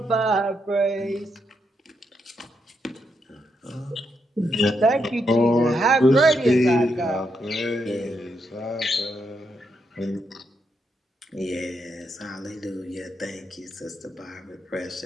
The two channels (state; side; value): normal; both; correlation 0.80